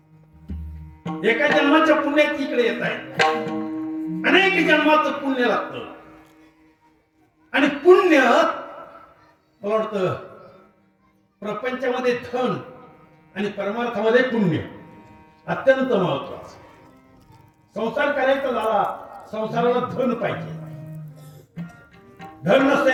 एका जन्माच्या पुण्यात इकडे येत आहे, अनेक जन्माचं पुण्य लागतं. आणि पुण्य मला वाटतं प्रपंचामध्ये धन आणि परमार्थामध्ये पुण्य अत्यंत महत्वाचं. संसार करायचा झाला, संसाराला धन पाहिजे. धन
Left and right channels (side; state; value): both; identical; correlation 1.00